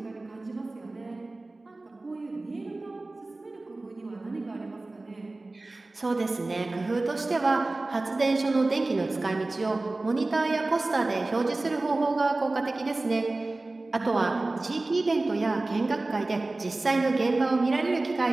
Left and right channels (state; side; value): quieter; left; 3.0 dB